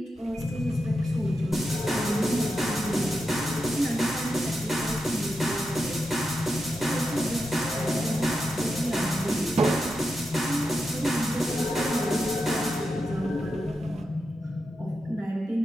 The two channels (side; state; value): both; normal; correlation 0.87